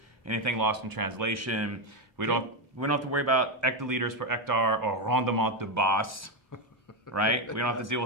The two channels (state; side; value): normal; both; correlation 0.08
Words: anything lost in translation. We don't have to worry about hectoliters per hectare or rendement de base, right? We don't have to deal